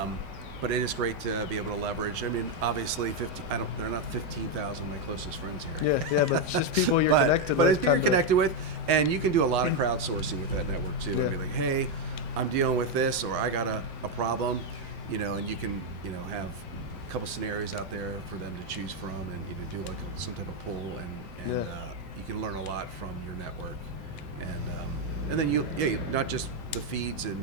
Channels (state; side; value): late; left; 4.1 ms